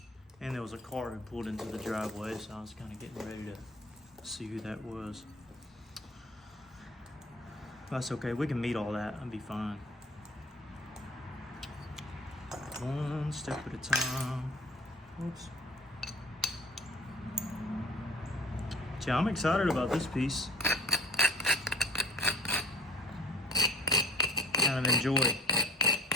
And there was a car who pulled into the driveway, so I was kind of getting ready to see who that was. That's okay, we can meet all that, I'll be fine. One step at a time. Oops. Yeah, I'm excited about this piece. Kind of enjoy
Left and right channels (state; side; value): normal; both; correlation 0.45